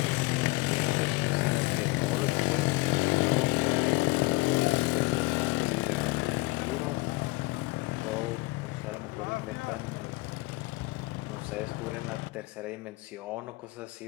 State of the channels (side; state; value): right; quieter; 22.5 dB